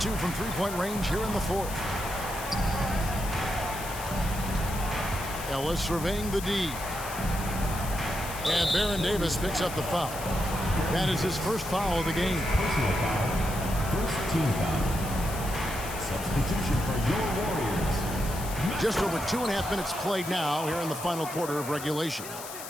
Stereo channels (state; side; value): noise; left; hiss, 11 dB below the sound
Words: 2 from three-point range here in the fourth. Ellis surveying the D. And Baron Davis picks up the foul. That is his first foul of the game. Personal foul. First team foul. Substitution for your Warriors. Just over 2.5 minutes played now here in the final quarter of regulation.